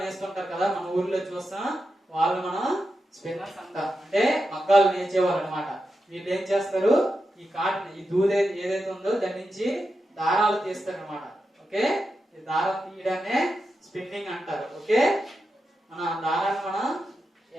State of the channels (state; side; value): normal; both; correlation 0.89